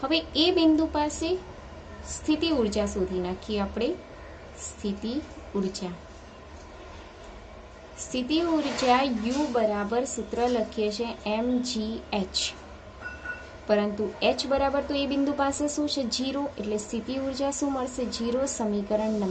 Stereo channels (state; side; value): identical; both; correlation 1.00